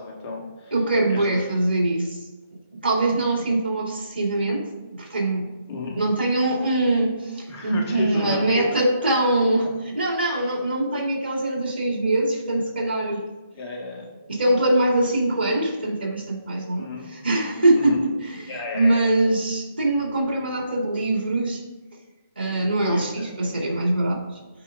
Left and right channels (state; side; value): inverted; both; correlation -0.77